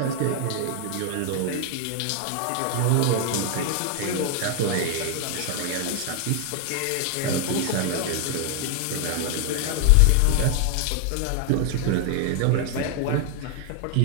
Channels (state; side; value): different; both; correlation 0.01